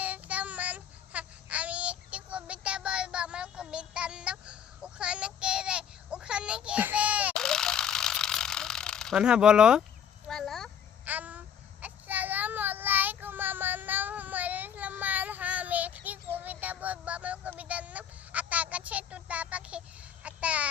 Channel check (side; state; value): right; quieter; 8.5 dB